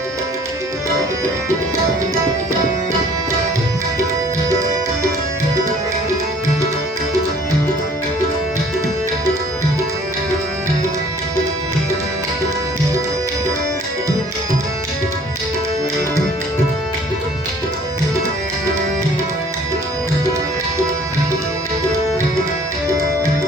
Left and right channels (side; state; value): both; normal; correlation 0.54